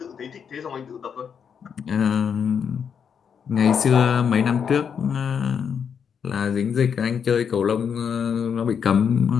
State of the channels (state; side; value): quieter; right; 7.2 dB